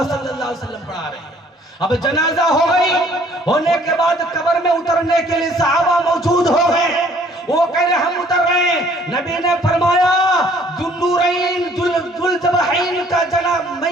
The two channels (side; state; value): both; normal; correlation 0.59